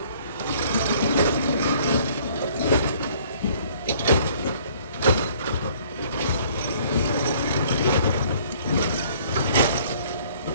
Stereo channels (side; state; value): both; inverted; correlation -0.57